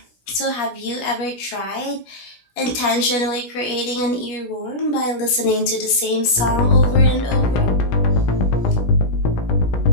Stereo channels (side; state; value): right; late; 16 ms